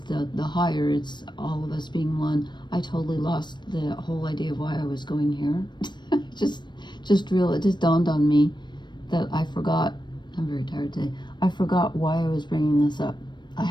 higher. It's all of us being one. I totally lost the whole idea of why I was going here. It just dawned on me that I forgot. I'm very tired today. I forgot why I was bringing this up. I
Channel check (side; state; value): right; late; 0.22 ms